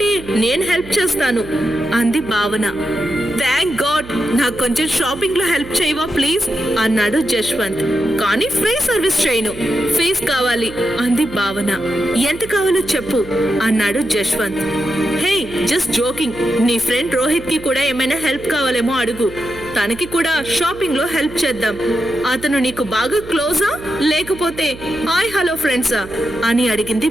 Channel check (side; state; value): right; noise; hum, 17 dB below the sound